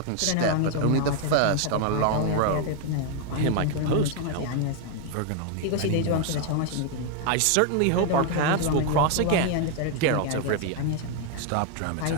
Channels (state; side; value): different; both; correlation 0.01